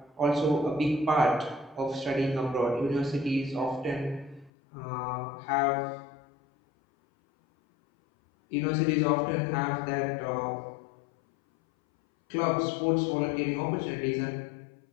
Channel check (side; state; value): right; drops out; at 4.5 s